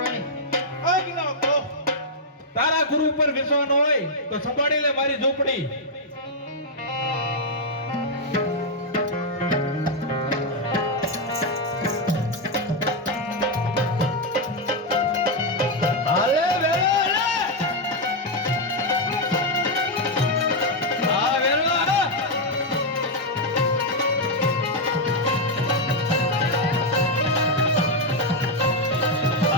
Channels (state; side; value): normal; both; correlation 0.00